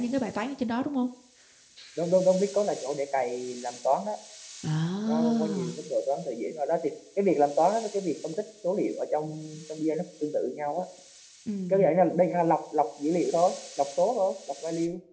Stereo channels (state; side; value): identical; both; correlation 1.00